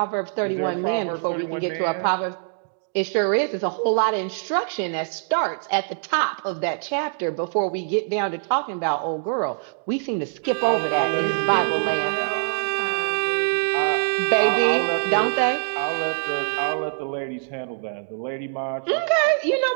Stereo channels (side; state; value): left; silent; digital silence